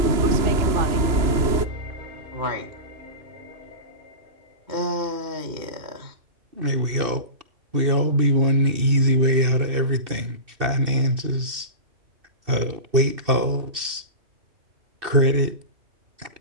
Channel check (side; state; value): left; late; 2.6 ms